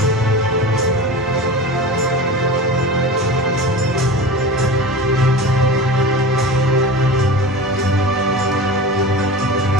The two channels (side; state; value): both; normal; correlation 0.31